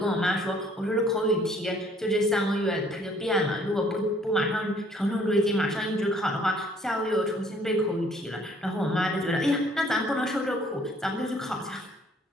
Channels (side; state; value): both; normal; correlation 0.60